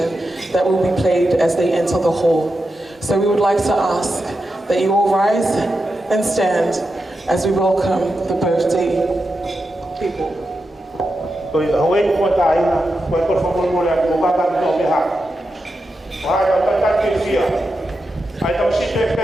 that will be played as they enter the hall. So we would like to ask that you all rise and stand as we welcome the birthday people.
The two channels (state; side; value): normal; both; correlation 0.89